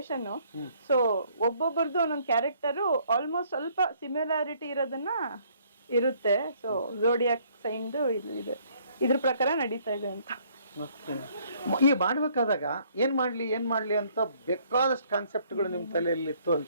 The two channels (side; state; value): both; inverted; correlation -0.64